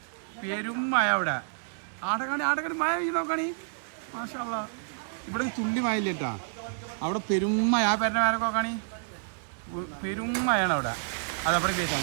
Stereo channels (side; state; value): left; silent; digital silence